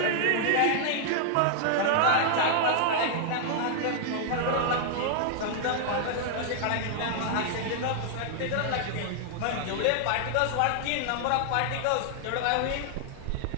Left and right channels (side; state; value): both; different; correlation -0.01